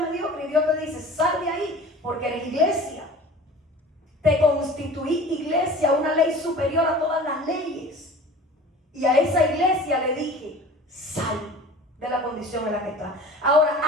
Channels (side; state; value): both; normal; correlation 0.41